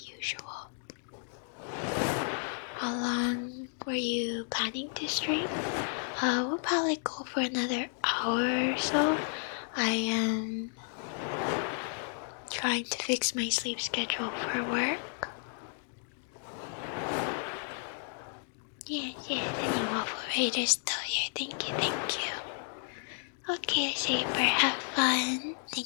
How long were you planning to stream? We'll probably go for another hour or so. I am trying to fix my sleep schedule for work. Yes, any Waffle Raiders still here. Thank you. Okay, Saber, have fun.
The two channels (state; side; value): silent; right; 56 dB below the other